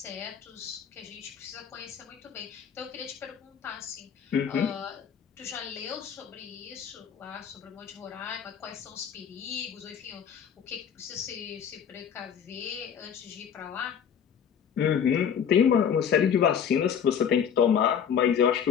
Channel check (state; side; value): quieter; right; 7.9 dB